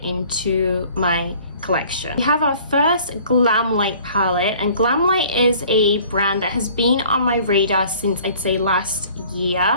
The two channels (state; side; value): inverted; both; correlation -0.51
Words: into my collection. We have our first Glamlight palette, and Glamlight is a brand that has been on my radar since, I'd say, last